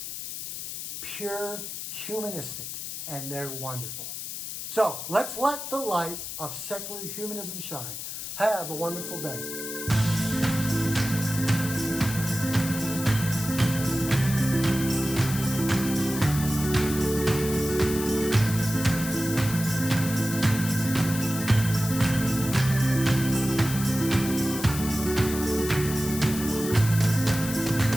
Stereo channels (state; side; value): noise; left; hiss, 7 dB below the sound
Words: pure humanistic, and they're wonderful. So let's let the light of secular humanism shine. Have a wonderful day.